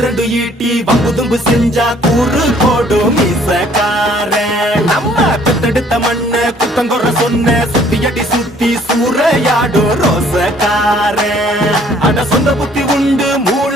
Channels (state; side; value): normal; both; correlation 0.59